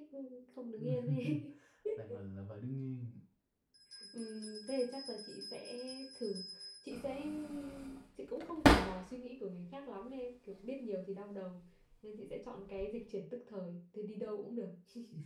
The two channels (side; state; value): both; identical; correlation 1.00